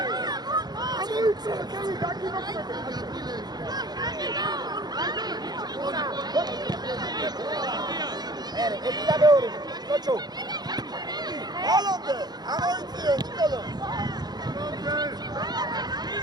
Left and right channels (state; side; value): late; left; 0.20 ms